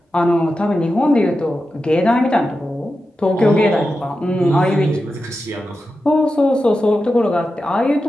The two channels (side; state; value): both; normal; correlation 0.91